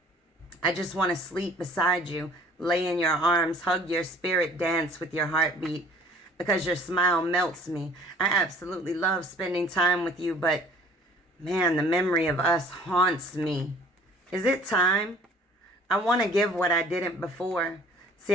I just want to sleep beside you, lay in your arms, hug your spirit, dance with your heartbeat, because your smile melts me. I absolutely love spending time with you, but man, the memory of us haunts me. Is it time? I want to give what I didn't before.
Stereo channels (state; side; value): normal; both; correlation 0.52